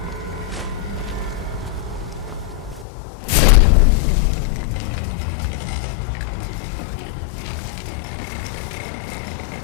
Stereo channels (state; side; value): drops out; right; at 2.9 s